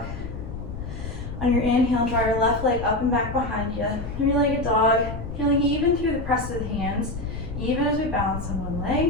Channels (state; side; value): noise; left; rumble, 8 dB below the sound